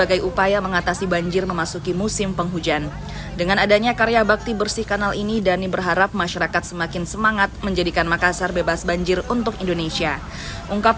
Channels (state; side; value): identical; both; correlation 1.00